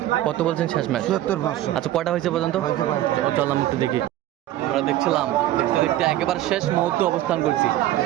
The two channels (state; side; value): quieter; left; 14.0 dB